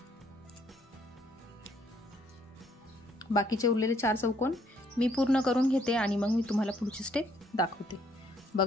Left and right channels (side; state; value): both; normal; correlation 0.67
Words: बाकीचे उरलेले 4 चौकोन मी पूर्ण करून घेते आणि मग मी तुम्हाला पुढची स्टेप दाखवते.